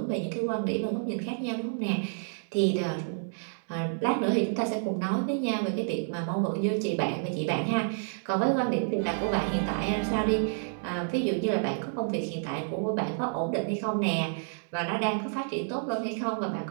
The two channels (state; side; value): silent; left; digital silence